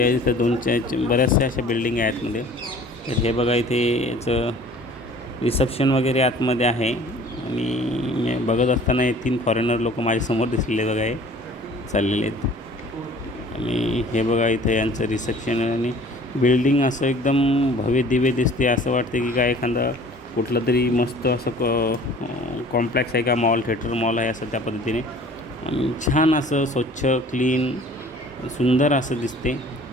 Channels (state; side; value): normal; both; correlation 0.49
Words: इथं बऱ्याचशा अशा बिल्डिंग आहे आतमध्ये. तर हे बघा, इथे याचं रिसेप्शन वगैरे आतमध्ये आहे. आणि मी बघत असताना हे 3 फॉरेनर लोक माझ्यासमोर दिसलेले बघा, हे चाललेले आहेत. आणि हे बघा, इथं यांचं रिसेप्शन आहे. आणि बिल्डिंग असं एकदम भव्य दिव्य दिसते. असं वाटते की काय एखादा कुठलं तरी मस्त असं कॉम्प्लेक्स आहे का, मॉल थिएटर मॉल आहे असं त्या पद्धतीने. आणि छान असं स्वच्छ क्लीन सुंदर असं दिसते.